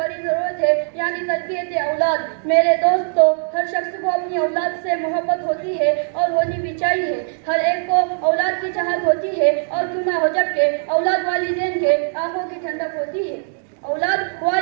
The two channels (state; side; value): silent; left; digital silence